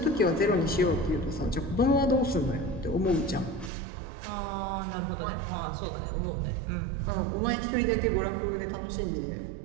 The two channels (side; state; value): left; drops out; at 3.7 s